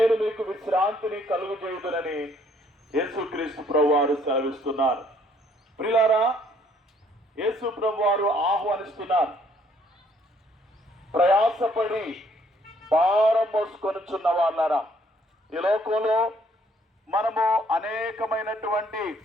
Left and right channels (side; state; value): both; normal; correlation 0.64